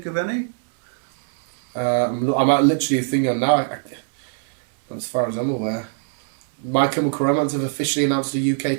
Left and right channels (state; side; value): silent; left; 64 dB below the other